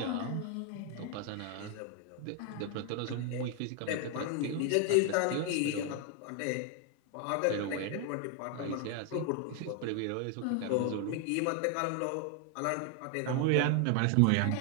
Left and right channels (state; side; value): different; both; correlation 0.00